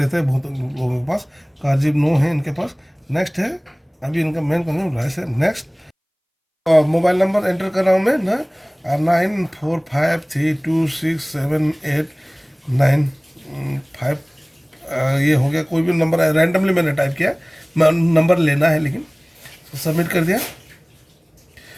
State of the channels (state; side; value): identical; both; correlation 1.00